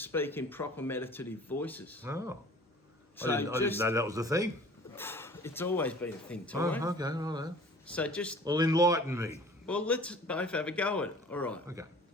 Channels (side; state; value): both; normal; correlation 0.47